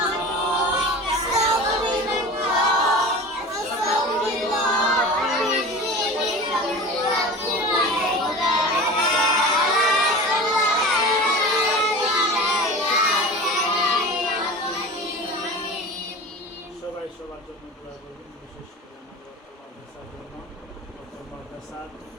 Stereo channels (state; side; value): normal; both; correlation 0.34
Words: সবার জন্য দোয়া করবেন, বিশেষ করে আমাদের মাদ্রাসার জন্য, মাদ্রাসার